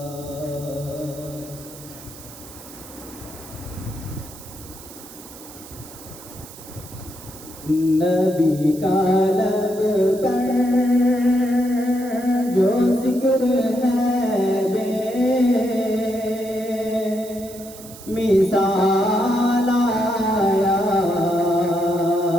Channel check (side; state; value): right; noise; hiss, 17 dB below the sound